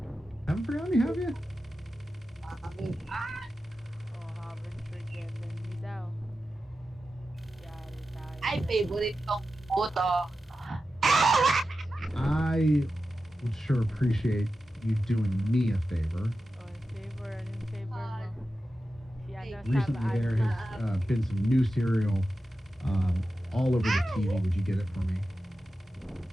Haven't forgotten me, have you? Oh, haven't forgotten me daw. Yari tayo. Ay, favorite kong photo. I would sure appreciate you doing me a favor. Oh, favor, anong favor mo? Si ano, Recently, there has been some new cereal all over the TV. Would you get it for me?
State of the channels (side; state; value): both; normal; correlation 0.92